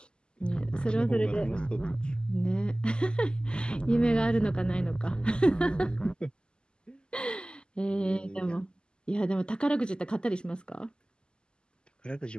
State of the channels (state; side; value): late; right; 0.048 ms